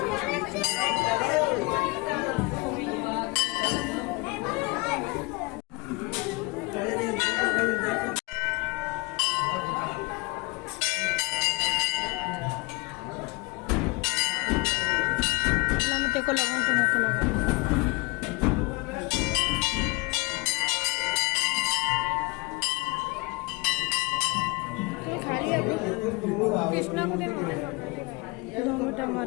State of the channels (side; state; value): right; quieter; 26.0 dB